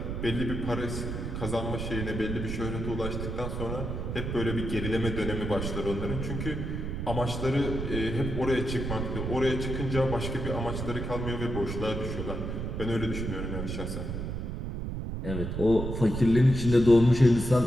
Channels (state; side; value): noise; right; rumble, 4 dB below the sound